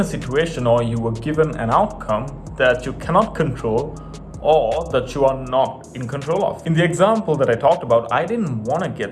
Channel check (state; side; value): identical; both; correlation 1.00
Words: situation or you were given an outcome that you cannot control or that you are not in control of. In the example that I talked about, I didn't want to